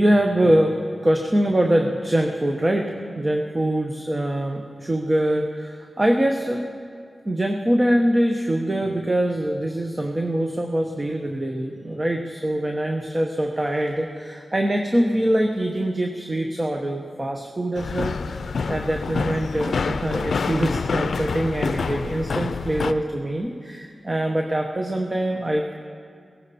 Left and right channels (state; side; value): normal; both; correlation 0.95